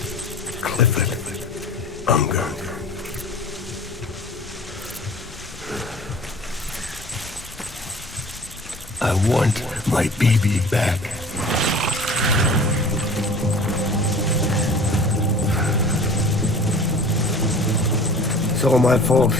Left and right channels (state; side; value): noise; left; rumble, 19 dB below the sound